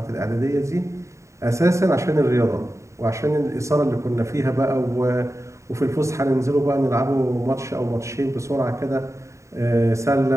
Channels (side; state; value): left; late; 0.14 ms